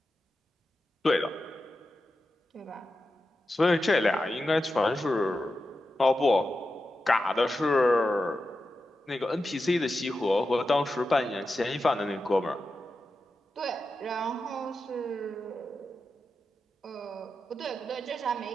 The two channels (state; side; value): normal; both; correlation 0.91